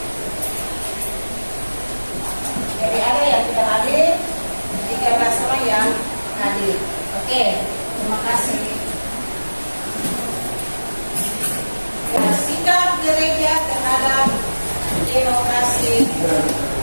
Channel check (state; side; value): inverted; both; correlation -1.00